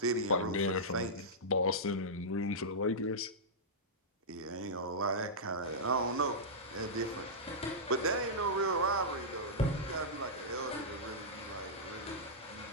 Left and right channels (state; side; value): normal; both; correlation -0.13